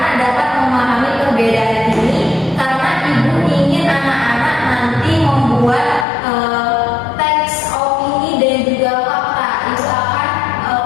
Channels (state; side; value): drops out; right; at 6.1 s